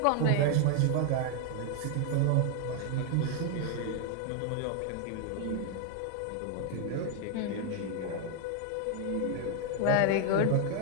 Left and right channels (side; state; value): both; different; correlation 0.00